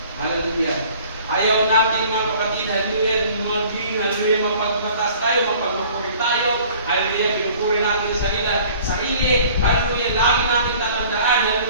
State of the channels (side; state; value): both; inverted; correlation -0.51